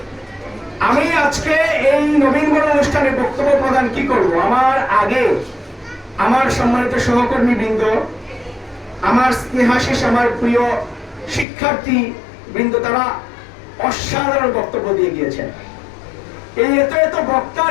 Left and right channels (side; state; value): right; drops out; at 11.5 s